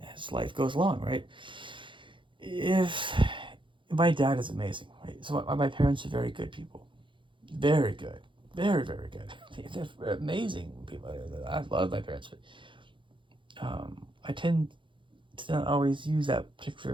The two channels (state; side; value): late; left; 0.24 ms